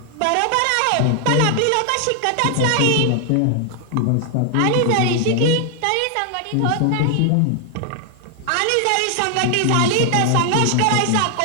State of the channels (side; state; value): both; different; correlation 0.00